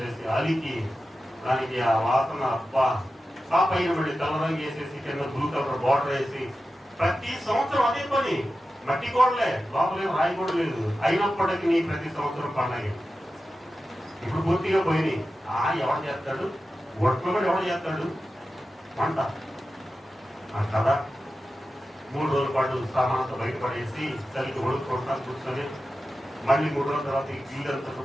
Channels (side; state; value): both; normal; correlation 0.93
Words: అలికి దానికి ఆ వాసన అబ్బా, ఆ పైన మళ్ళీ తెల్లరంగు వేసేసి కింద బ్లూ కలర్ బార్డర్ వేసి ప్రతి సంవత్సరం అదే పని. మట్టి గోడలే, లోపలేం రాయి కూడా లేదు. అయినప్పటికీ ప్రతి సంవత్సరం పండగ. ఇప్పుడు పూర్తిగా పోయినాయి. ఎవరు చేస్తాడు? ఒట్లు కూడా ఎవరు చేస్తాడు? వంట కదా. 3 రోజుల పాటు సామానంతో బయటపడేసి చలికి ఒడుకుంటా కూర్చొని మళ్ళీ 3 రోజుల తర్వాత ఇల్లంతా